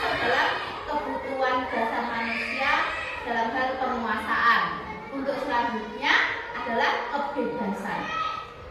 dalam kebutuhan dasar manusia dalam hal penguasaan. Untuk selanjutnya adalah kebebasan.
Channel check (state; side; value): identical; both; correlation 1.00